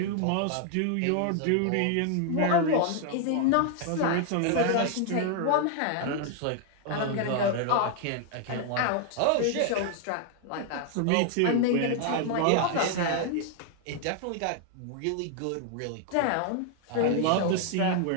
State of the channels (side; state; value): both; different; correlation 0.00